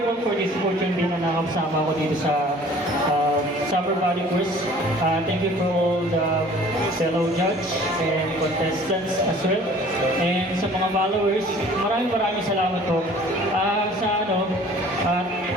for this opportunity na nakakasama ko dito sa Summer Body Course. Thank you for all the fellow judge and contestants as well. And sa mga followers, maraming salamat po.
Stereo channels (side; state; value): both; normal; correlation 0.50